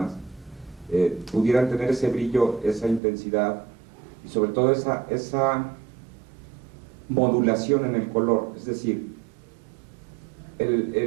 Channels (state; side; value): drops out; left; at 3.0 s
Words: pudieran tener ese brillo, esa intensidad, y sobre todo esa modulación en el color. Es decir,